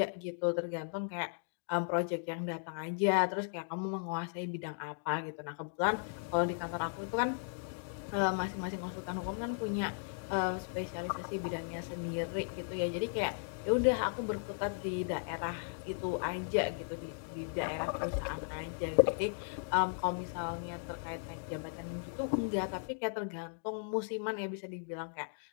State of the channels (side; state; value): right; silent; digital silence